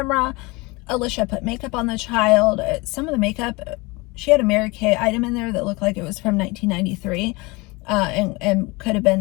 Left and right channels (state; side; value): quieter; right; 24.8 dB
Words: Alicia put makeup on the child. Some of the makeup, she had a Mary Kay item in there that looked like it was from 1993 and could have